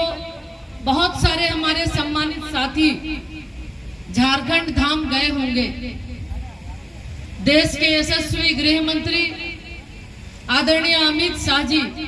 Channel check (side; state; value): both; identical; correlation 1.00